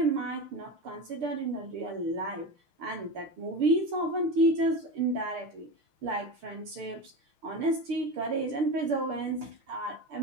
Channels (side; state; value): left; late; 6.7 ms